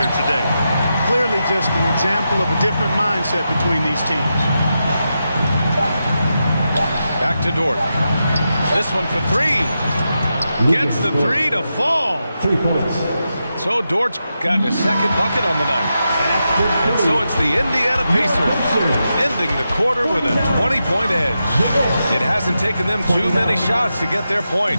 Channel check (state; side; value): inverted; both; correlation -0.88